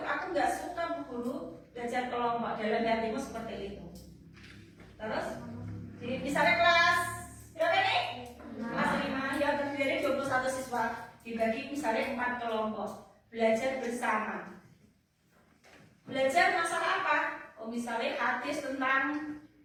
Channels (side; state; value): both; identical; correlation 1.00